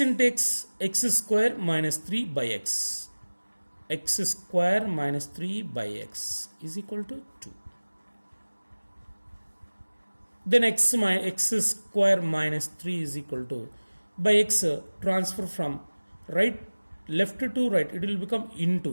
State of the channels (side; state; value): both; inverted; correlation -1.00